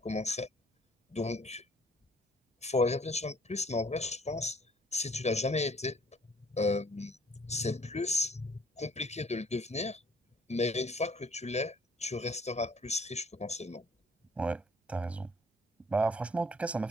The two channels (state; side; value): normal; both; correlation 0.58